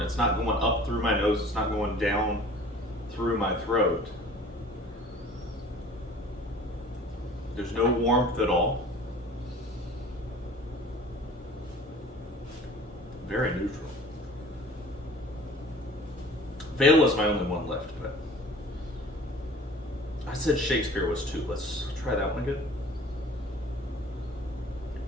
It's not going up through my nose, it's not going down through my throat. There's no warmth at all. Very neutral. Vale is my only one left, but I said Shakespeare was 2. Let's try that one again.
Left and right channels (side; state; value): both; normal; correlation 0.46